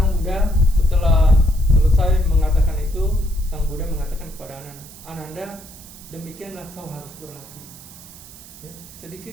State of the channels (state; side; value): noise; right; hiss, 18 dB below the sound